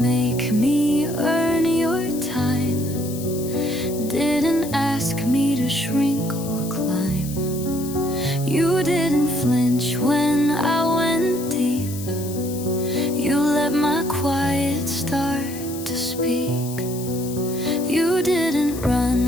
me earn your time, didn't ask me to shrink or climb. You didn't flinch when I went deep. You let my quiet start to speak. You didn't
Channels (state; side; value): noise; left; hiss, 13 dB below the sound